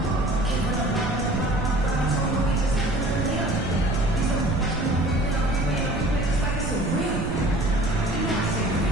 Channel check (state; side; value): noise; right; rumble, 5 dB below the sound